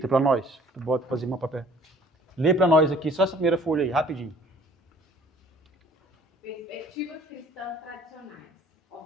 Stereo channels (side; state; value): both; normal; correlation 0.54